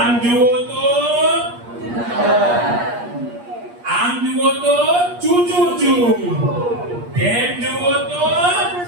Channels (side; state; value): left; late; 8.5 ms